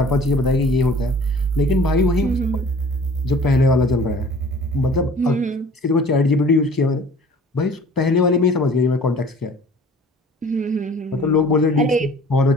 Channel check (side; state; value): both; normal; correlation 0.48